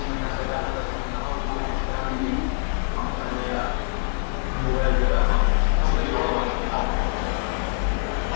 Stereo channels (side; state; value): right; silent; 62 dB below the other